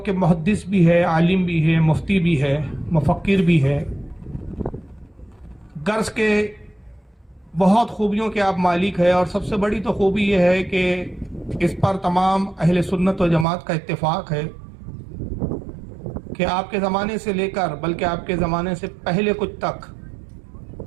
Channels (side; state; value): left; drops out; at 13.5 s